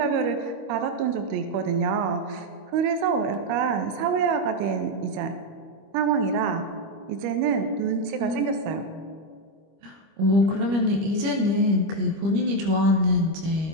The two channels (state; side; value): late; left; 25 ms